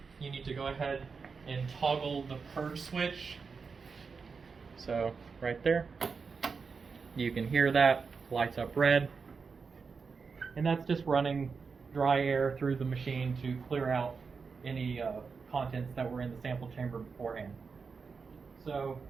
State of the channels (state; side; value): quieter; left; 5.1 dB